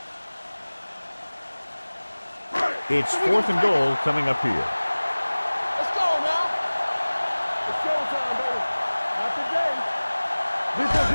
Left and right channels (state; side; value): inverted; both; correlation -1.00